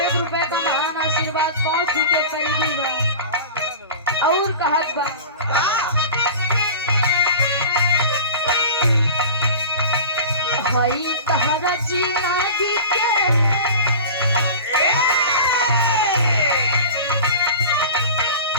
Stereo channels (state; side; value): inverted; both; correlation -0.35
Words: रुपए का महान आशीर्वाद, 5 के पहली बा और कहत बा भाई तहरा जी नागी के